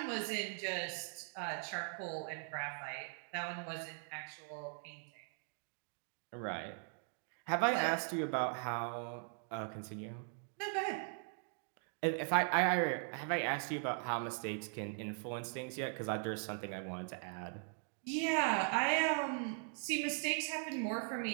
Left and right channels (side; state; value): left; silent; 51 dB below the other